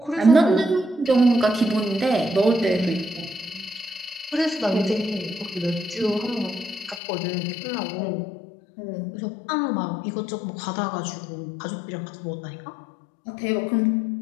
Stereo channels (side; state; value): right; drops out; at 7.0 s